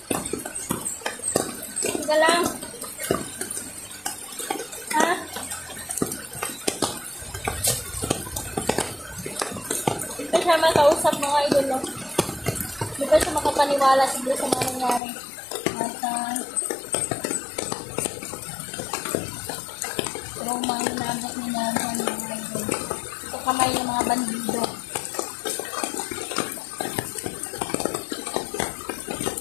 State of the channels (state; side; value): drops out; right; at 15.0 s